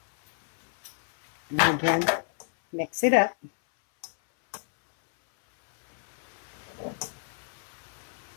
again, mix it up.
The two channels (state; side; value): silent; right; 59 dB below the other